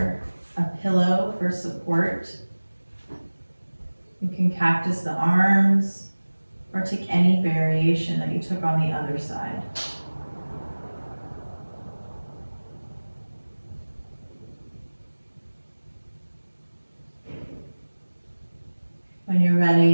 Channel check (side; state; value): both; inverted; correlation -1.00